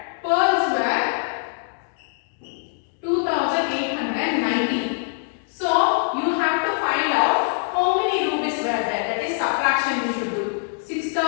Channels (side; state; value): right; silent; 63 dB below the other